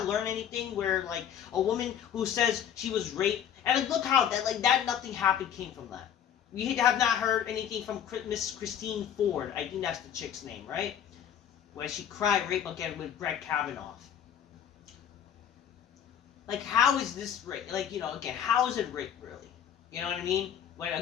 learn anything where, like, a woman who says she was raped, and look how, nothing happened came from that. We have not heard anything from Miss Christine Ford. I think that's the chick's name, right? Where she cried rape again with Brett Kavanaugh. Like, how is this rape? Like, again, how is it rape, really? You know what I mean? When,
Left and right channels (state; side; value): quieter; right; 9.3 dB